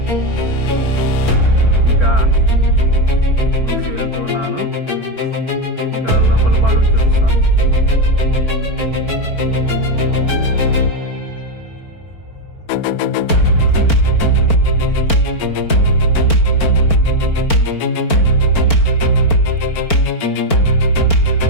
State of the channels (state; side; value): late; right; 4.4 ms